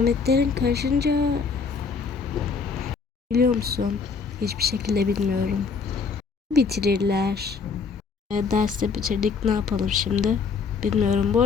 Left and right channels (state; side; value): quieter; right; 5.2 dB